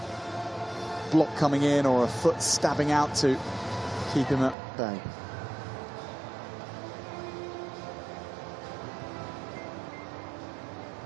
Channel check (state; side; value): drops out; left; at 4.5 s